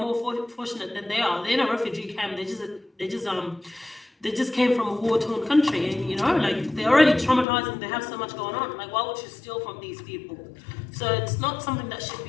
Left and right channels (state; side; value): drops out; right; at 7.5 s